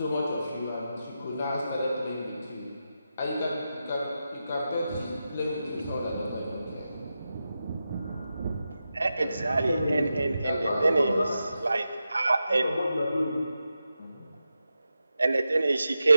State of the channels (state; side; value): inverted; both; correlation -0.89